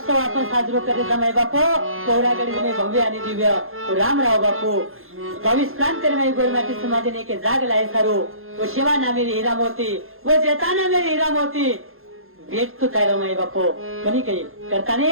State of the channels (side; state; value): left; late; 0.61 ms